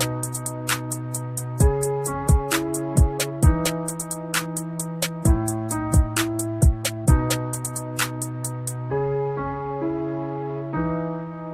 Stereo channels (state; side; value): identical; both; correlation 1.00